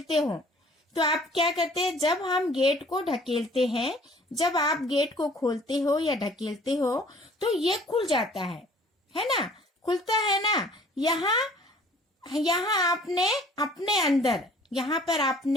हो, तो आप क्या करते हैं, जब हम गेट को ढकेलते हैं, जब आप गेट को खोलते हो या ढकेलते हो तो ये खुल जाता है ना, खुलता है ना। यहाँ आपने अपने अंदर, यहाँ पर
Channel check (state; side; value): normal; both; correlation 0.53